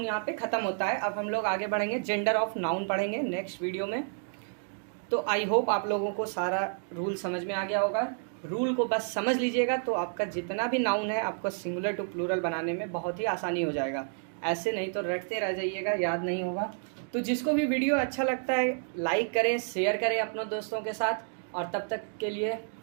यहाँ पे ख़त्म होता है। अब हम लोग आगे बढ़ेंगे, जेंडर ऑफ नाउन पढ़ेंगे नेक्स्ट वीडियो में। तो आई होप आप लोगों को सारा रूल समझ में आ गया होगा। रूल को बस समझ लीजिएगा तो आपका जितना भी नाउन है आपको सिंगुलर टू प्लूरल बनाने में बहुत ही आसानी हो जाएगा। ऐसे नहीं तो रटते रह जाइएगा, याद नहीं होगा। तो जिसको भी वीडियो अच्छा लगता है लाइक करें, शेयर करें अपने दोस्तों के साथ। और तब तक के लिए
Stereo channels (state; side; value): silent; left; 58 dB below the other